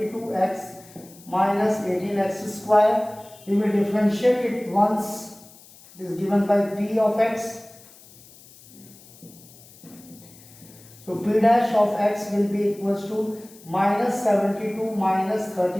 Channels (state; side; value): noise; left; hiss, 23 dB below the sound